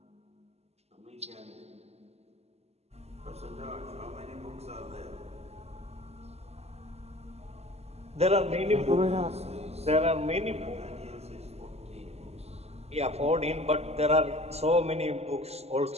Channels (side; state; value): left; late; 0.30 ms